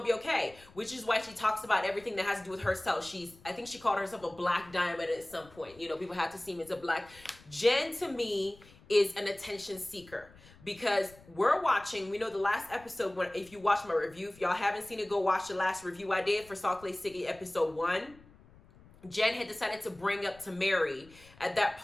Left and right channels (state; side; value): noise; left; rumble, 24 dB below the sound